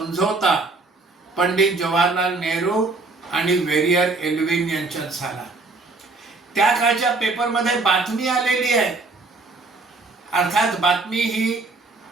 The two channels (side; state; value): left; quieter; 3.6 dB